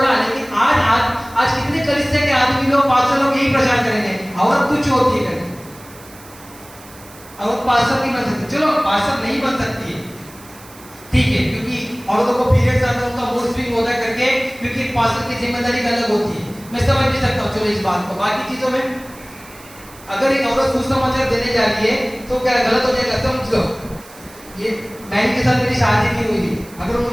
लेकिन आज कितने कलीसिया के आदमी लोग, पास्टर लोग यही प्रचार करेंगे, औरत तुच्छ होती है, औरत पास्टर नहीं बन सकती। चलो पास्टर नहीं बन सकती है, ठीक है, क्योंकि औरतों को पीरियड्स आते हैं, उनका मूड स्विंग होता है करके, क्योंकि पास्टर की जिम्मेदारी अलग होती है, मैं समझ भी सकता हूँ। चलो इस बात को, बाकी चीजों में अगर एक औरत सुसमाचार देने जा रही है तो क्या गलत हो जाएगा? समझ लो, ये बहन के साथ मेरी शादी नहीं हुई, अगर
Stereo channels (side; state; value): right; noise; hiss, 21 dB below the sound